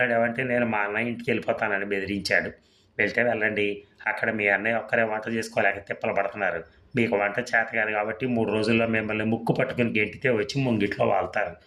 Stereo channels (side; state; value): both; identical; correlation 1.00